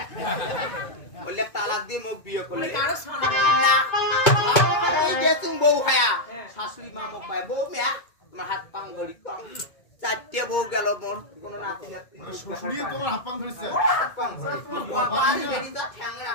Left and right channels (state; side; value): late; right; 2.2 ms